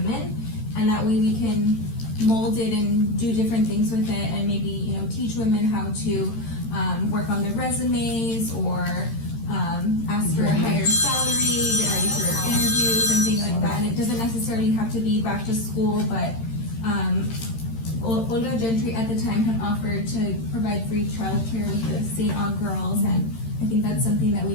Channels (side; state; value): right; late; 13 ms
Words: and that way we can mold it and do different things with it, and maybe, teach women how to work on their resumes, or ask for a higher salary, get ready for interviews and things like that. And it doesn't necessarily have to be back to school, but Olga Gentry at the time had offered to provide free childcare with the St. Aug girls, and I think that's something that we